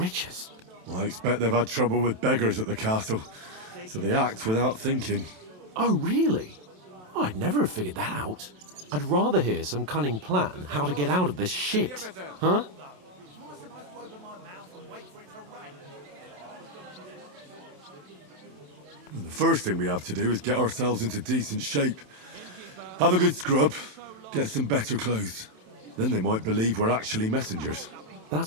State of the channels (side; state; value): left; late; 27 ms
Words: Well, I expect they've had trouble with beggars at the castle, so they act without thinking. Oh, really? I'd never have figured that out. I'd rather hear some cunning plan how to get out of this shit. Huh? Well, the first thing we have to do is get ourselves into decent shape. Have a good scrub, get some better clothes. Then they might believe we're actually messengers.